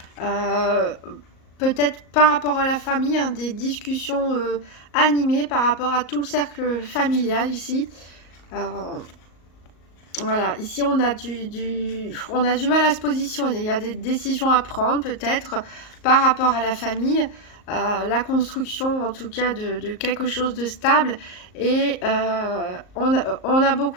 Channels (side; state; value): right; late; 38 ms